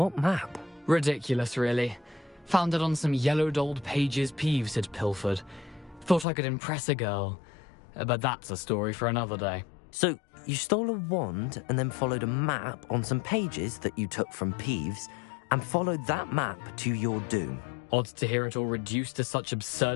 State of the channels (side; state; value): right; drops out; at 6.2 s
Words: map? Ridiculous, really. Found it on some yellowed old pages Peeves had pilfered. Thought I could impress a girl. But that's a story for another day. So, you stole a wand and then followed a map on some pages that you took from Peeves and followed that map to your doom. Odd to hear it all reduced to such